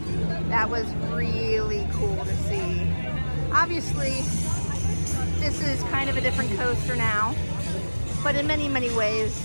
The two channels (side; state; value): both; inverted; correlation -1.00